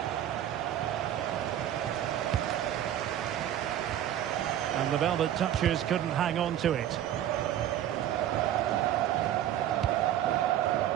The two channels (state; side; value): quieter; left; 11.4 dB